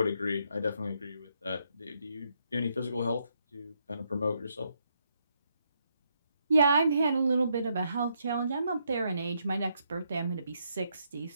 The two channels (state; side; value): inverted; both; correlation -0.77